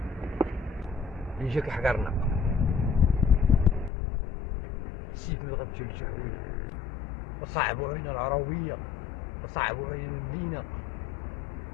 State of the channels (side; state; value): right; drops out; at 3.9 s